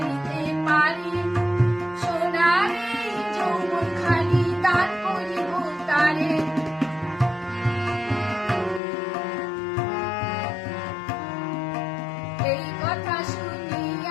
পারি, সোনার এই যৌবন খালি দান করিব তারে, এই কথা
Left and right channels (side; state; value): right; drops out; at 8.8 s